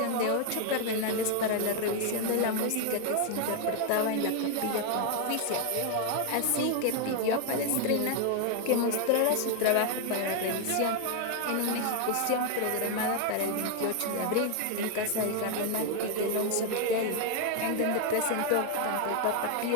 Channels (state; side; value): different; both; correlation 0.00